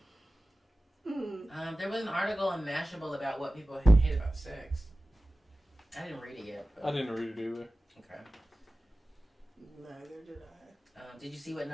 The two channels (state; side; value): normal; both; correlation 0.96